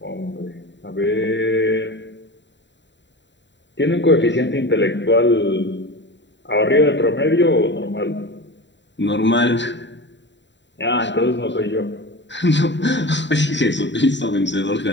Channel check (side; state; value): right; late; 0.52 ms